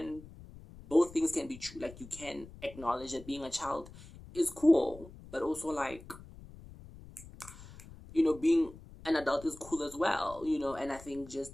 both things can be true. Like, you can acknowledge that being a child is cool, but also, like, you know, being an adult is cool as well, you know? And I think just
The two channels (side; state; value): left; noise; rumble, 17 dB below the sound